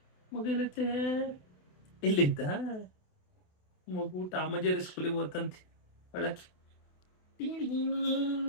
ಮಗು ಇಲ್ಲೈತೆ? ಇಲ್ಲಿದ್ದ ಮಗು ಟಾಮಜೇರಿ ಸ್ಕೂಲಿಗೆ ಹೋತಂತೆ ಒಳಕ್ಕೆ.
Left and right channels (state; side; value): late; right; 28 ms